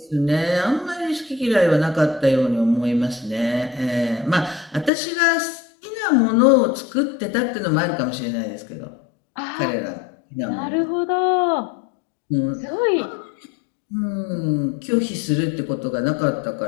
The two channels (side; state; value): right; drops out; at 4.9 s